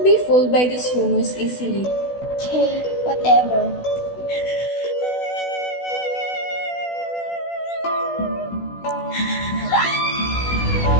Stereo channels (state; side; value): late; right; 16 ms